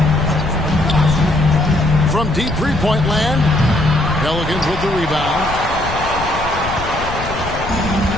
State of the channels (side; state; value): left; noise; rumble, 9 dB below the sound